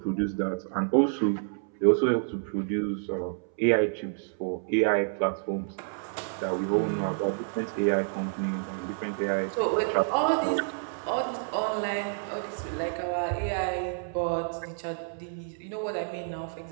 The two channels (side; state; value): left; silent; 59 dB below the other